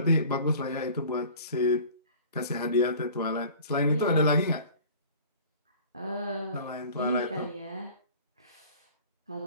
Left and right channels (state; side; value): inverted; both; correlation -0.44